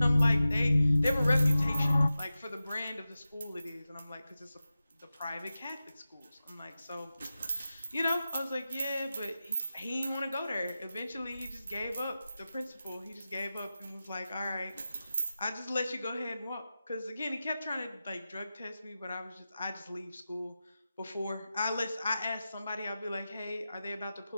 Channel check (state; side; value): inverted; both; correlation -0.94